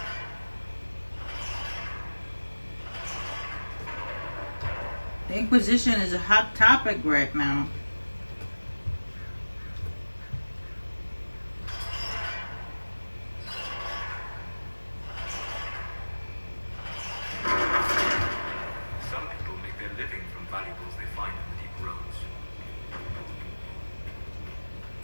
The Inquisition is a hot topic right now. Some people make their living from valuables they find in the deep roads.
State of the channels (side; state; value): both; inverted; correlation -1.00